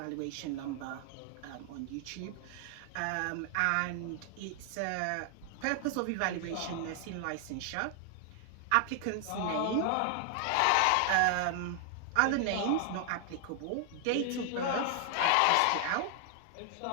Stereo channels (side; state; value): both; different; correlation 0.00